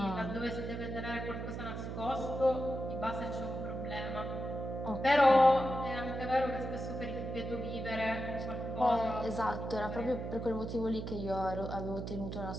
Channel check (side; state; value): right; noise; hum, 5 dB below the sound